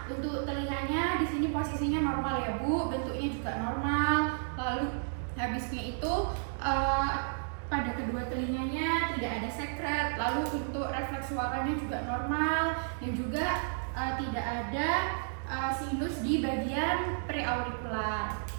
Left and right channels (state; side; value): silent; left; digital silence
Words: Untuk telinganya di sini posisinya normal ya Bu, bentuknya juga normal. Lalu habisnya itu pada kedua telinganya tidak ada sekret. Lalu untuk refleks suaranya juga normal, dan juga tidak ada sinus di bagian preaurikular.